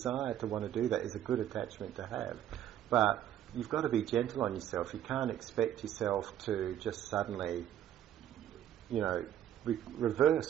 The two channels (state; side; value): quieter; left; 11.1 dB